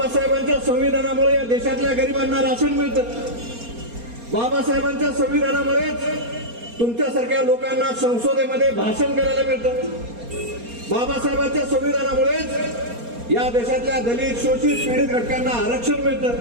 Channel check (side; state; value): left; late; 4.3 ms